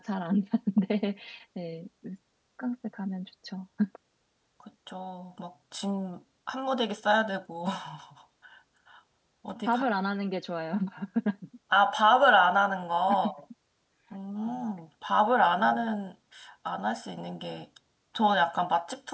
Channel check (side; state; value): both; identical; correlation 1.00